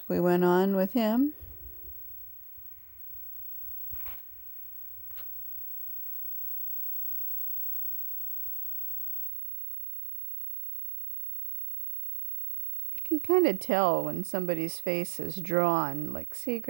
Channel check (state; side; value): drops out; left; at 9.3 s